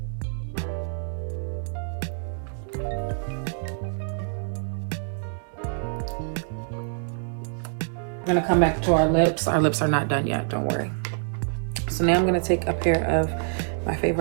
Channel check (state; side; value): silent; left; digital silence